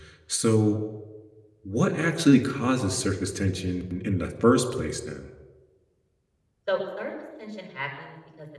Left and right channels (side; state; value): both; identical; correlation 1.00